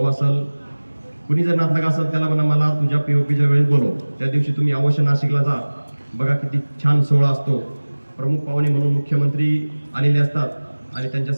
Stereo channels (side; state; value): both; inverted; correlation -1.00